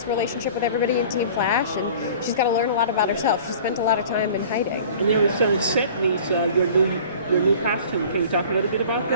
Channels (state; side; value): inverted; both; correlation -0.45